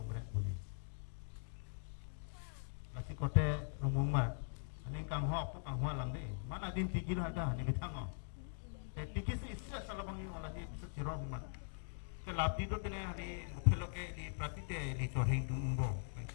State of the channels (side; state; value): right; silent; digital silence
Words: बोली masih kote rumumar ini kang ho aku kang ho lamde mana din tikir ada ni bitang te tikis issa salabang malah di siro man ke labdi to tene hari phelo ke di prapite di chohing dumbo